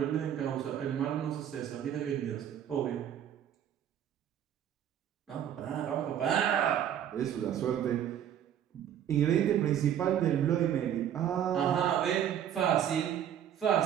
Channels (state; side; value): quieter; left; 9.8 dB